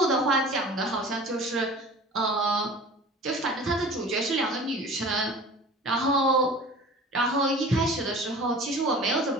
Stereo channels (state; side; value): normal; both; correlation 0.41